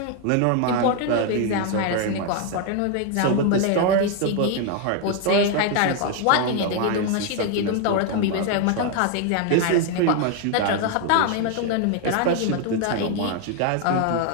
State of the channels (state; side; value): different; both; correlation 0.01